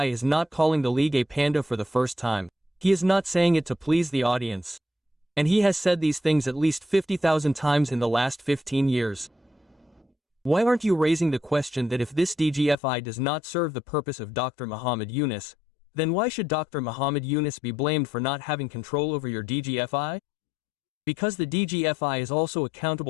is not calling the league a panda for the first time. He is not saying it to please the audience. And he has said these things at least 50,000 times in the last 15 years. Why aren't you raising the question that if this DGFI does not serve the purpose of Dr. Muhammad Yunus, then why should Dr. Muhammad Yunus be blamed for not having control over your DGFI? Because the DGFI is also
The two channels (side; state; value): right; drops out; at 12.8 s